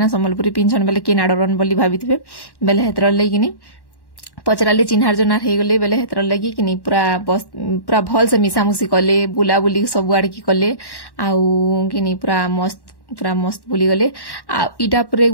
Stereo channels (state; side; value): late; right; 1.1 ms